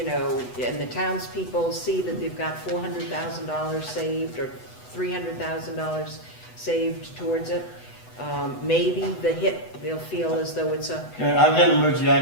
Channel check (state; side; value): late; right; 8.0 ms